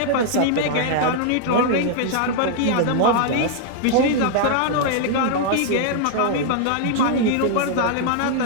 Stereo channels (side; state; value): both; different; correlation 0.00